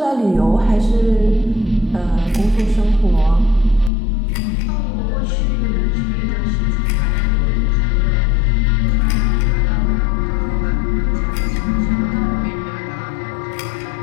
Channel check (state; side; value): drops out; right; at 3.9 s